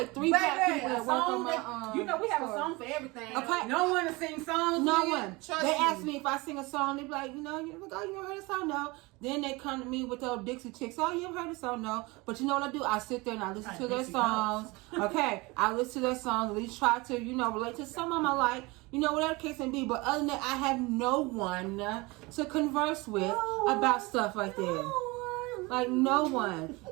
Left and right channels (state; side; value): quieter; left; 24.2 dB